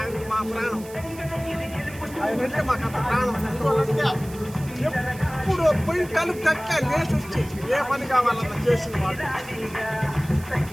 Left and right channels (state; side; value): noise; right; hiss, 19 dB below the sound